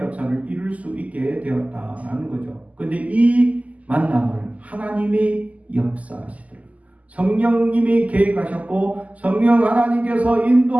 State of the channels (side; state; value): left; late; 0.073 ms